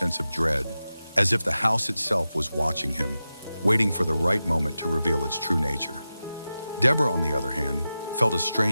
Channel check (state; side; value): inverted; both; correlation -0.93